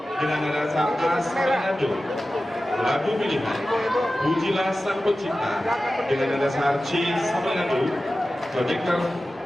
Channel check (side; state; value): both; normal; correlation 0.95